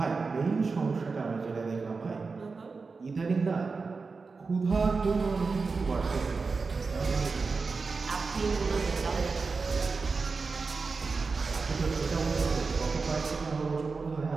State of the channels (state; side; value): quieter; left; 4.4 dB